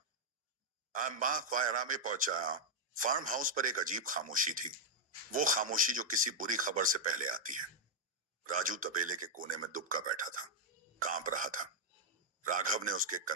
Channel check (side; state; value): both; normal; correlation -0.01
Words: मां ख्वायरा में पहुंचा, फार्म हाउस पर एक अजीब खामोशी थी। वो खामोशी जो किसी बुरी खबर से पहले आती है। राजू तबेले के कोने में दुबका बैठा था, कांप रहा था। राघव ने उसके